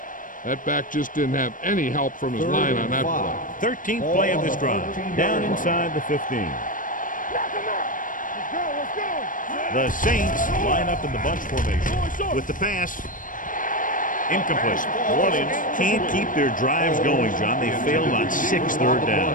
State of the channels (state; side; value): late; right; 0.39 ms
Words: That back just didn't have any help from his line on that play. 13th play of this drive. Down inside the 15. Knock him out. Let's go, let's go. The Saints line up in the bunch formation. With the pass, incomplete. New Orleans can't keep their drives going, John. They failed on 6 third